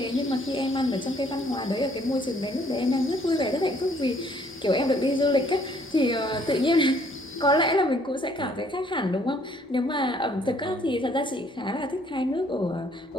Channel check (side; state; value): both; normal; correlation 0.63